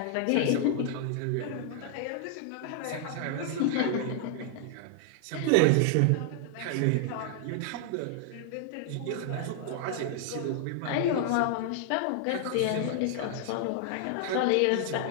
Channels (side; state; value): both; different; correlation 0.00